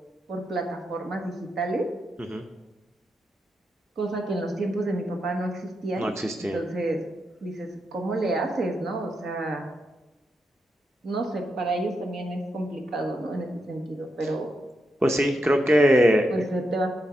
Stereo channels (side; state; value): both; normal; correlation 0.84